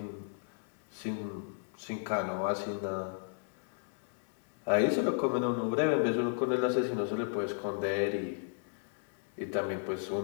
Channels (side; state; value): right; silent; digital silence